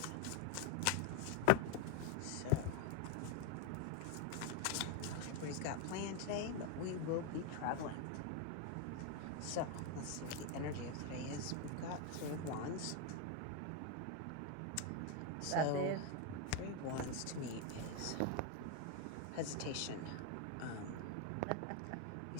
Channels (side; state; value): both; different; correlation 0.01